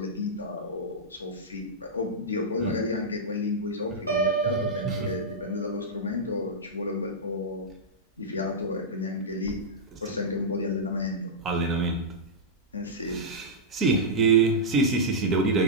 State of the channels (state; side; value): normal; both; correlation -0.10